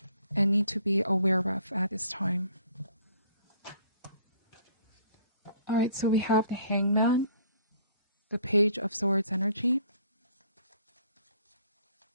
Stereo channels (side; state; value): both; inverted; correlation -0.58